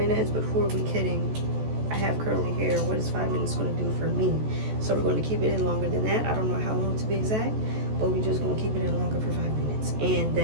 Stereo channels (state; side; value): late; left; 14 ms